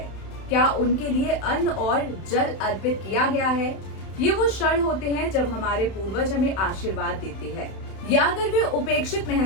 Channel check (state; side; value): late; right; 31 ms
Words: क्या उनके लिए अन्न और जल अर्पित किया गया है। ये वो क्षण होते हैं जब हमारे पूर्वज हमें आशीर्वाद देते हैं, या अगर वे उपेक्षित